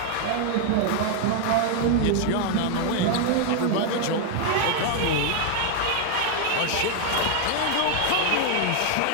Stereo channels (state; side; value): different; both; correlation 0.00